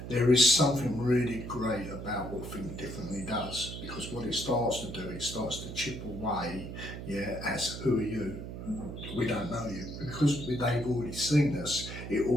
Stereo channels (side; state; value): right; noise; hum, 8 dB below the sound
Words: there is something really great about what Think Differently does, because what it starts to do, it starts to chip away, as who are you? We don't know you. Because they've already seen us, it